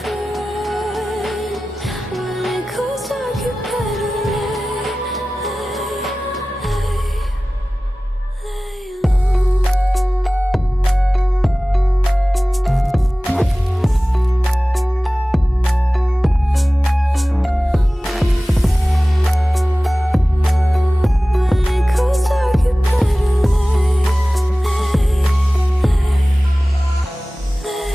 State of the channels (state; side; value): normal; both; correlation 0.97